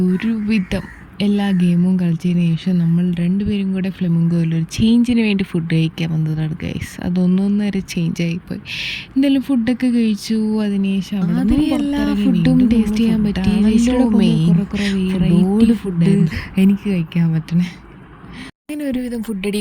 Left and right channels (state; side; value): identical; both; correlation 1.00